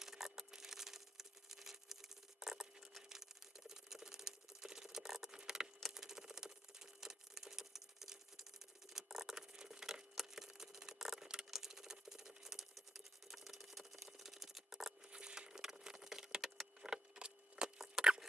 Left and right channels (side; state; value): both; normal; correlation 0.80